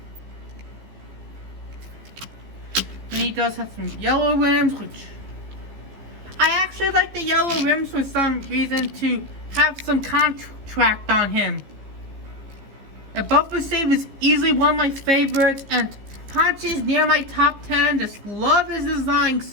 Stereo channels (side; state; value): left; late; 15 ms